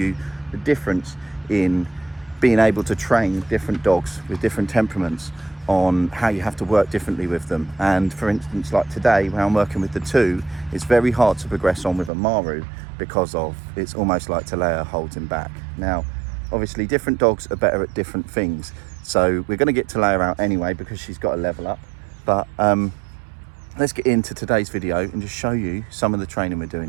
the difference in being able to train different dogs with different temperaments, on how you have to work differently with them. And for instance, like today when I'm working with the 2, it's very hard to progress on with Amaru because of it's almost like Talaya holds him back. Now obviously different dogs are better at different things, so we're going to get Talaya out anyway because she's got to level up. But let's get into today's video and just show you some of the training we're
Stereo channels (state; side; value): drops out; left; at 12.1 s